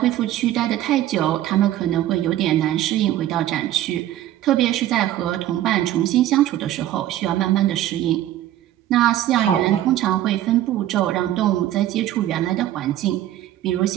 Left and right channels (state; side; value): quieter; left; 13.1 dB